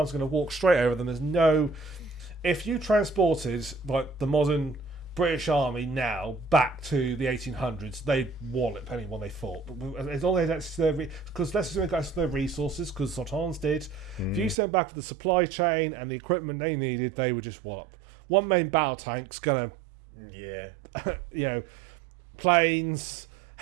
going to walk straight over them. There's no... If you transported like the modern British Army now back to the 1800s, they'd wallop anyone they fought. But as long as that's because let's assume that's their resources, because Sultans did. If you sent back for the supply chain and the equipment they needed, they would just wallop. One main battle tank's gonna, planes,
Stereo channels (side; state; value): left; drops out; at 14.6 s